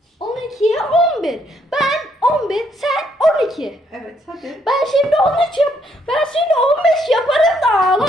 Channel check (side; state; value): both; normal; correlation 0.71